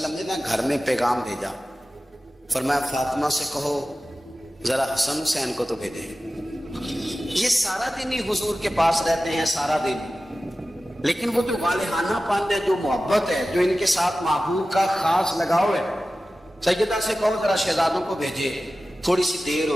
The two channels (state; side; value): normal; both; correlation 0.95